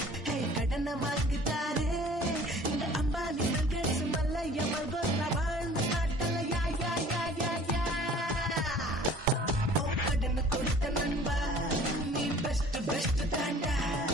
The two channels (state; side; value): normal; both; correlation 0.49